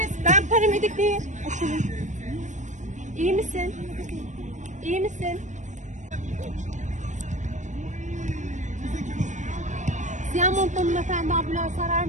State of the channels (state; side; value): late; left; 0.35 ms